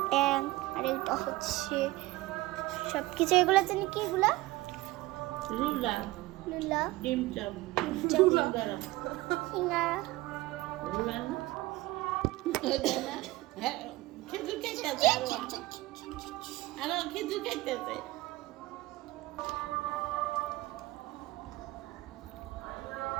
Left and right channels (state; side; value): quieter; left; 19.3 dB